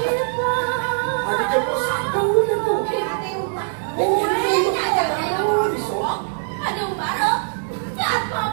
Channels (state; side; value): silent; left; digital silence